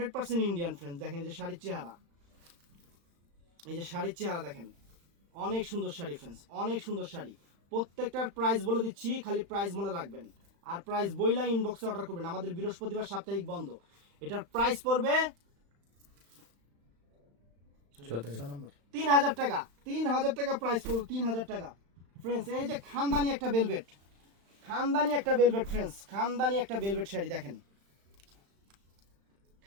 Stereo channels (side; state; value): left; late; 35 ms